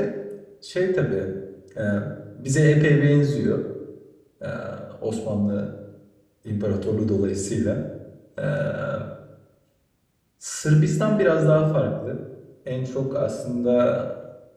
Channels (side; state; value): both; identical; correlation 1.00